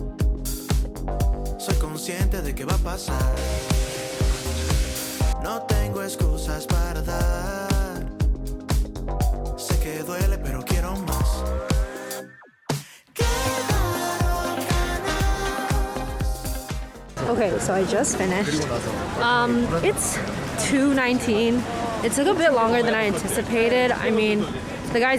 Soy consciente de que va a pasar. No tengo excusas para dar. Sé que duele, pero quiero más. Okay, so I just finished. It's 2:19. It took a bit longer than I anticipated. I mean, the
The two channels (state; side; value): identical; both; correlation 1.00